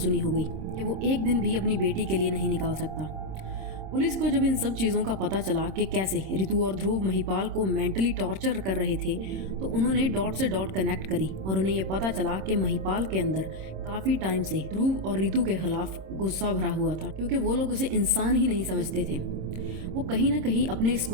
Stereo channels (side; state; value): left; late; 26 ms